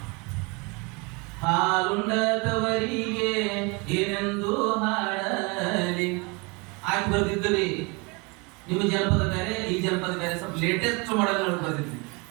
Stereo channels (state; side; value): quieter; left; 29.0 dB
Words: ಹಾಲುಂಡದವರಿಗೆ ಏನೆಂದು ಹಾಡಲಿ. ಆಗಿ ಬರ್ದಿದ್ದಲ್ಲಿ ನಿಮ್ಮ ಜನಪದ ಬೇರೆ, ಈ ಜನಪದ ಬೇರೆ, ಸ್ವಲ್ಪ ಲೇಟೆಸ್ಟ್ ಮಾಡಲ್ ಬರ್ದಿದ್ವಿ.